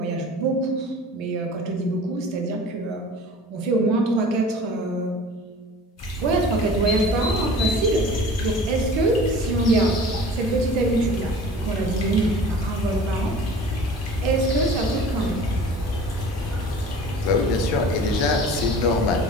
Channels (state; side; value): normal; both; correlation 0.43